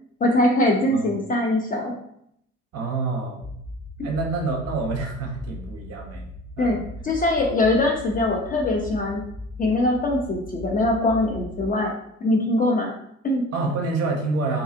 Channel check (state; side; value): normal; both; correlation 0.42